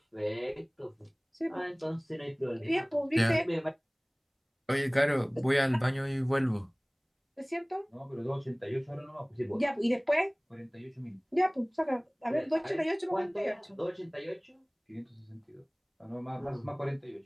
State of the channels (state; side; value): identical; both; correlation 1.00